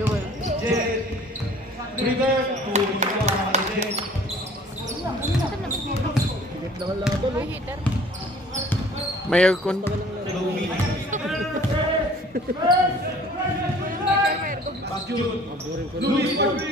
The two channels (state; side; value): normal; both; correlation 0.51